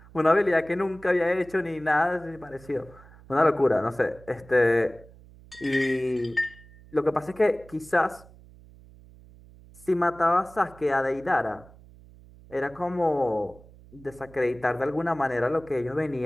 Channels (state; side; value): noise; right; hum, 23 dB below the sound